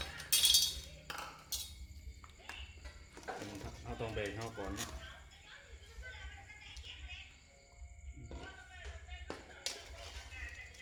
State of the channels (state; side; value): identical; both; correlation 1.00